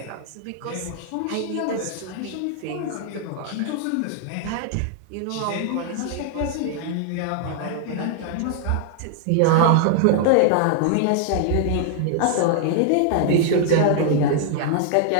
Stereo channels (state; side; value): different; both; correlation -0.01